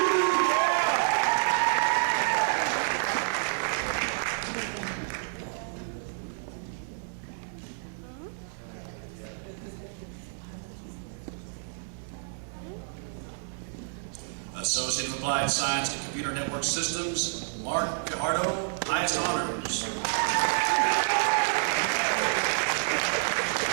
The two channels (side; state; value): left; silent; digital silence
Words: Associate of Applied Science and Computer Network Systems, Mark Pijardo, highest honors.